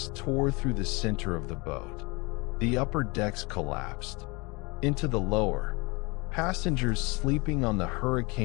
tore through the center of the boat. The upper decks collapsed. Into the lower, passengers sleeping on the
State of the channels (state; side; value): quieter; right; 27.2 dB